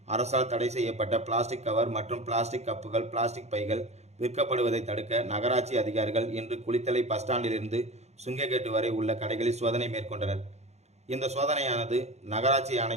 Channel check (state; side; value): late; left; 0.32 ms